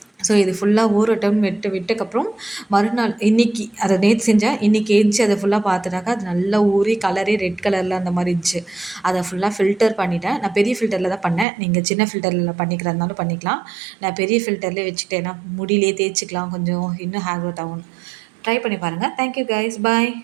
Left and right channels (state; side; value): drops out; left; at 11.5 s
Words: ஸோ இது ஃபுல்லாக ஊறட்டும்னு விட்டக்கப்புறம் மறுநாள் இன்றைக்கி அதை நேற்று செஞ்சேன். இன்றைக்கி ஏஞ்சி அதை ஃபுல்லாக பார்த்துட்டாக்கா அது நல்லா ஊறி கலரே ரெட் கலரில் அந்த மாதிரி இருந்துச்சு. அதை ஃபுல்லாக ஃபில்டர் பண்ணிட்டேன். நான் பெரிய ஃபில்டரில் தான் பண்ணேன். நீங்கள் சின்ன ஃபில்டரில் பண்ணிக்கிறதுனாலும் பண்ணிக்கலாம். நான் பெரிய ஃபில்டர்லேயே வச்சுக்கிட்டேன். ஏன்னா முடியிலே தேய்ச்சிக்கலாம், கொஞ்சம் இன்னும் ஹேர் க்ரோத் ஆகும். ட்ரை பண்ணி பாருங்கள். தேங்க்யூ கைஸ், பாய்.